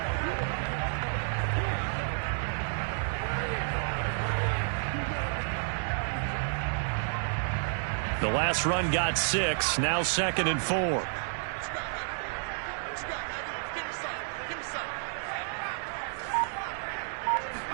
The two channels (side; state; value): left; silent; 57 dB below the other